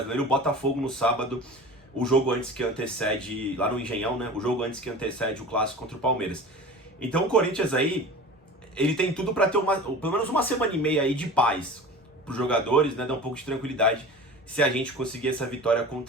O Botafogo no sábado, o jogo antes que antecede, lá no Engenhão, né? O jogo antes que antecede o clássico contra o Palmeiras. Então o Corinthians aí, ele tem tudo para ter pelo menos uma semana e meia aí de paz para os jogadores, né? Dar um pouco de tranquilidade se a gente conseguir essa vitória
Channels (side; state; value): both; normal; correlation 0.36